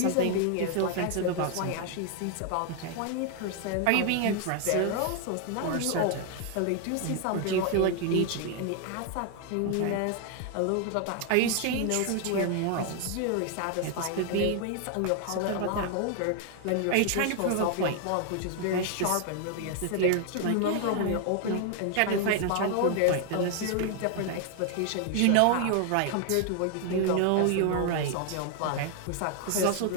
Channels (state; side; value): different; both; correlation 0.00